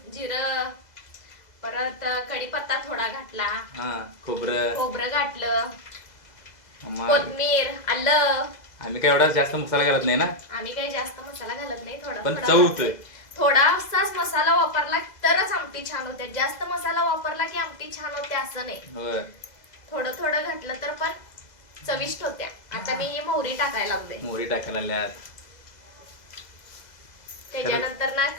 जिरं, परत कढीपत्ता थोडा घातला. हा, खोबरं घातलं, कोथिंबीर, आलं. आम्ही काय एवढा जास्त मसाला घालत नाही ना. आम्ही काही जास्त मसाला घालत नाही, पण चव होतोय. थोडासाच मसाला वापरला तरच आमटी छान होते. जास्त मसाला वापरला की आमटी छान होते असं नाही. थोडं थोडं घातलं तर पण चविष्ट होत्या. आता मी ही मोहरी टाकायला लागले. मोहरी टाकायला लागल्यात. त्याच्यानंतर ना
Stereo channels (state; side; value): late; right; 2.0 ms